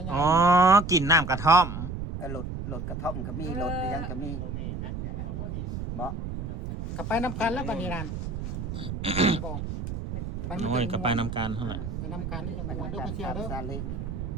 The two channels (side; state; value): right; noise; rumble, 5 dB below the sound